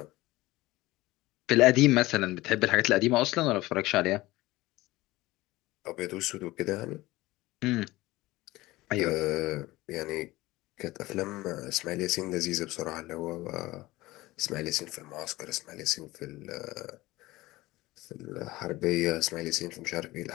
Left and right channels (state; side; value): quieter; right; 18.9 dB